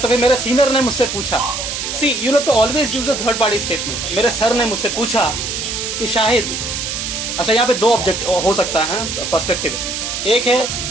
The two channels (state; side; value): noise; right; hiss, 4 dB below the sound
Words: फिर मेरे सीनियर ने मुझसे पूछा, see you have to always use a third party statement. मेरे सर ने मुझसे पूछा कि शाहिद, अच्छा यहाँ पे दो ऑब्जेक्ट हो सकता है पर्सपेक्टिव, एक